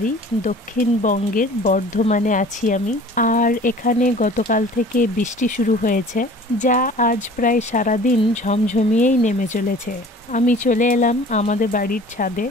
দক্ষিণবঙ্গের বর্ধমানে আছি আমি। আর এখানে গতকাল থেকে বৃষ্টি শুরু হয়েছে, যা আজ প্রায় সারাদিন ঝমঝমিয়েই নেমে চলেছে। আমি চলে এলাম আমাদের বাড়ির ছাদে।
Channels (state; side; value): normal; both; correlation 0.46